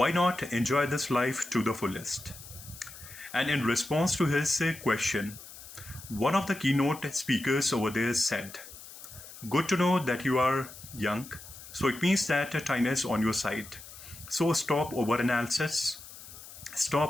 not enjoy this life to the fullest? And in response to his question, one of the keynote speakers over there said, good to know that you are young, so it means that time is on your side. So stop overanalysis,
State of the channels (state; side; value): noise; left; hiss, 16 dB below the sound